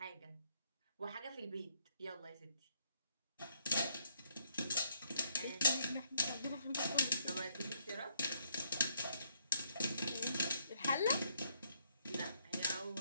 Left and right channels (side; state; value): both; inverted; correlation -0.71